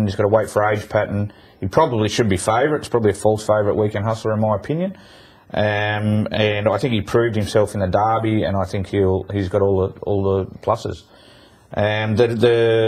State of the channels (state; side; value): identical; both; correlation 1.00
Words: He's got a wait for age pattern. He probably should be favourite. It's probably a false favourite Weekend Hustler in my opinion. And I think he proved himself in the Derby, and I think he's got all the pluses.